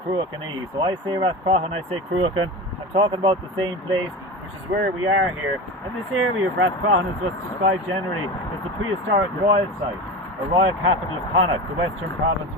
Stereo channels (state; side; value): normal; both; correlation 0.27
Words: Cruachan. So I say Rathcroghan, I say Cruachan. I'm talking about the same place, which is where we are here. And this area of Rathcroghan is what's described generally as the prehistoric Royal Site, or Royal Capital of Connacht, the western province